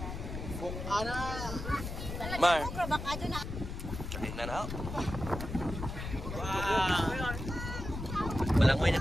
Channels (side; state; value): left; noise; rumble, 7 dB below the sound